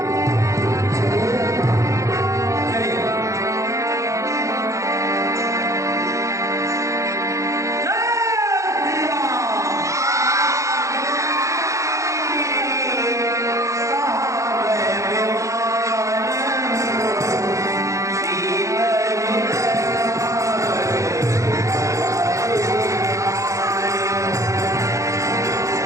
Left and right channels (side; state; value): left; late; 0.15 ms